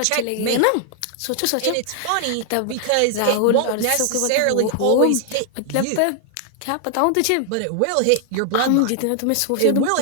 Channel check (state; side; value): different; both; correlation 0.00